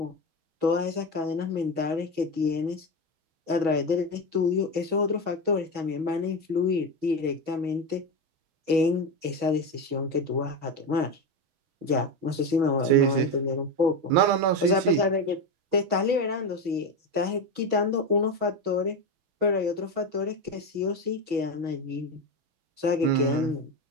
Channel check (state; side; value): late; left; 6.2 ms